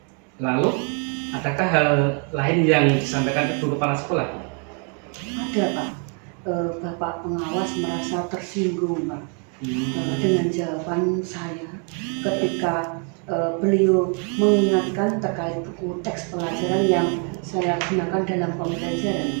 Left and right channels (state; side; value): quieter; left; 39.1 dB